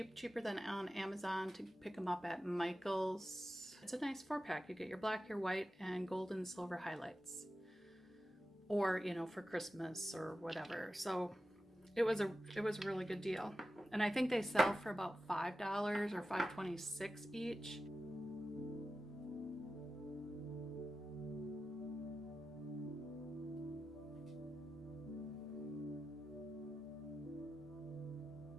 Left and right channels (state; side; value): normal; both; correlation 0.92